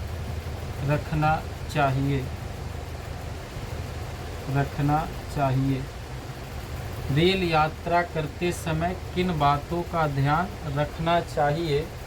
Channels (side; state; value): both; identical; correlation 1.00